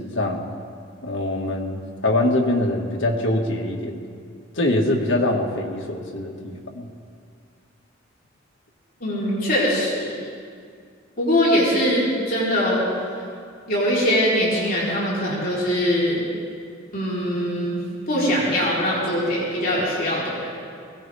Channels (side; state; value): both; normal; correlation 0.29